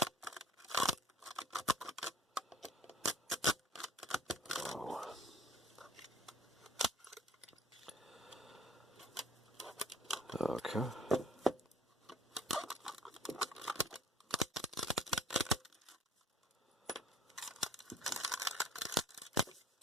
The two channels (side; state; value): both; normal; correlation 0.53